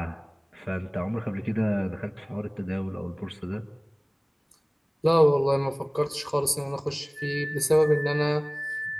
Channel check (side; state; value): both; identical; correlation 1.00